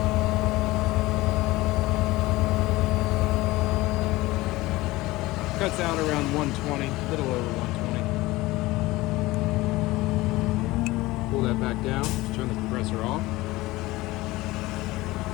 Cuts out around 120, a little over 120. Pull that back down, just turn the compressor off.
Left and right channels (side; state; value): right; quieter; 19.4 dB